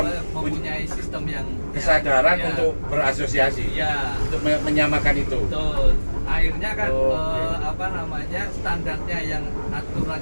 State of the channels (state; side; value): inverted; both; correlation -1.00